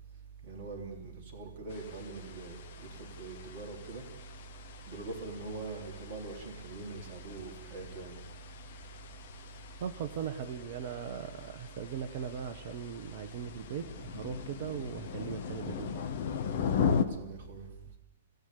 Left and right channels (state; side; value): inverted; both; correlation -0.40